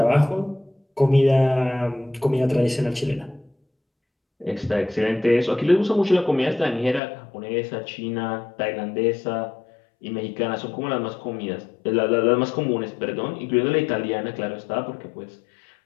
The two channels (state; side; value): drops out; right; at 7.0 s